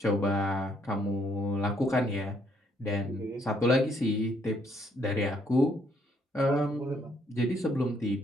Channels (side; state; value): both; normal; correlation 0.69